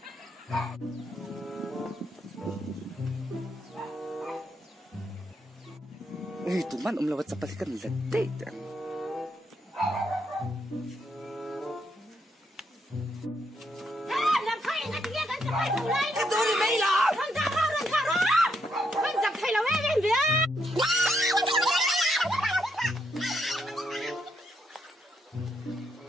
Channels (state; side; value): normal; both; correlation 0.77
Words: tụi man lawat sa palikan late. Làm thay ngay tiếng anh sẽ phải thủ lên. Cái tôi đi mấy lắm. Run thả ra. Anh giặc thay là em biết.